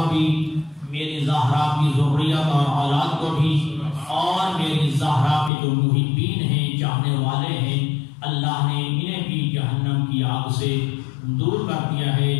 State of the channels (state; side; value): drops out; right; at 5.5 s